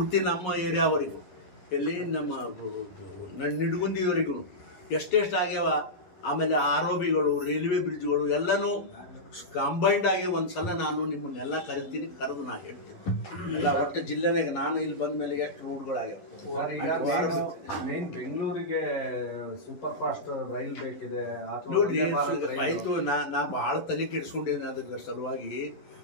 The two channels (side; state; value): right; late; 11 ms